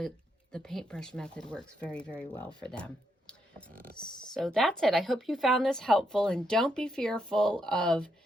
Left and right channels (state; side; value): normal; both; correlation 0.79